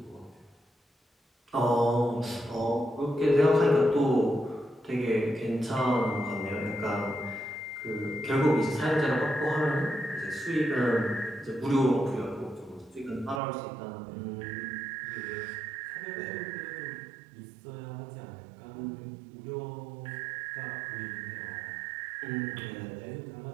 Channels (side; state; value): left; drops out; at 13.4 s